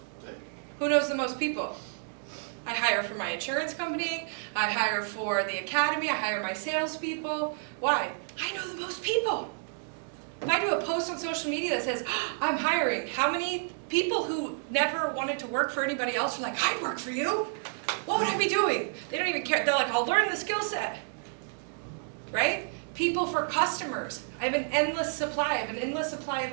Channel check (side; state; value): left; silent; digital silence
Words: Who knows the most people? I hire for my insurance company, I hire for the academy, I hire my salespeople. Why? I know the most people. If I do a post on social media that says, I'm hiring, how many people who never wanted to work for anybody else are like, I'd work for you? What would I be doing? They don't even care. They're like, I'll learn the skill set. Right? People for customers. I have an endless supply. I have an endless supply of